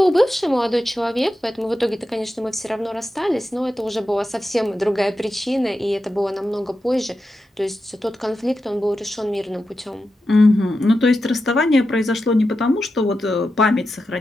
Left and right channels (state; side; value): normal; both; correlation 0.90